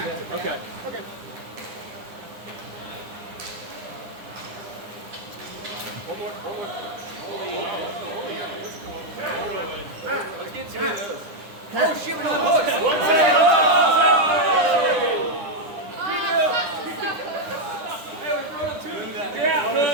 that. Okay. One more. Let's get 2 of those. Oh shit, we don't have hooks. Hey, we're throwing up 2.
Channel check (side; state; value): left; late; 9.9 ms